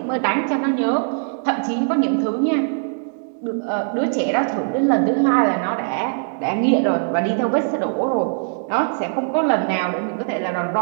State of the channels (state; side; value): silent; left; 65 dB below the other